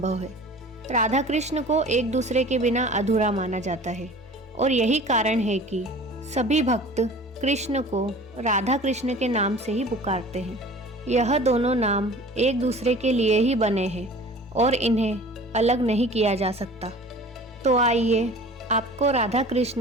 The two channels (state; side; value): normal; both; correlation 0.43